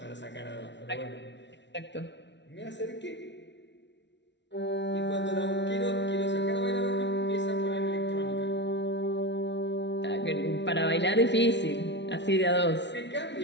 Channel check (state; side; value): late; right; 0.51 ms